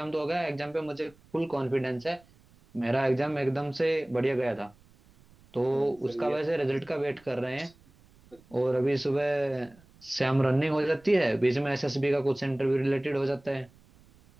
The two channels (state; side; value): noise; right; rumble, 28 dB below the sound